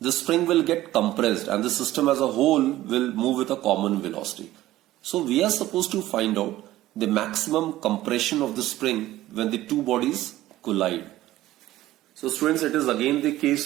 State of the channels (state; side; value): quieter; left; 15.4 dB